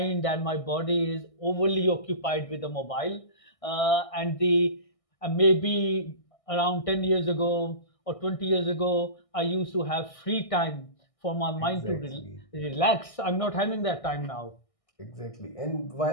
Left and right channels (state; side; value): late; right; 1.6 ms